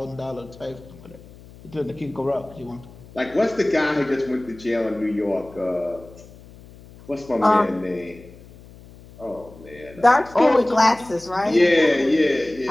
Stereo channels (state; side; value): noise; left; hum, 21 dB below the sound